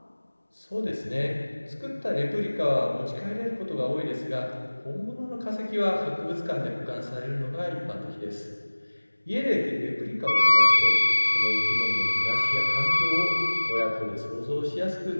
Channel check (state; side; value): inverted; both; correlation -1.00